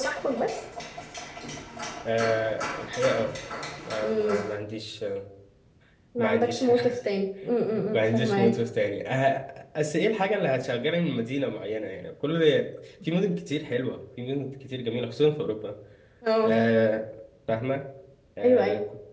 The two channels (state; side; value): identical; both; correlation 1.00